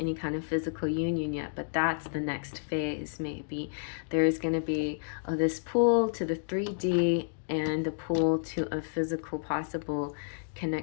kind of physical union yet, but that's the next phase. Maybe there is going to be this pull to the 3D and the pull to a physical possible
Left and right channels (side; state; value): right; silent; digital silence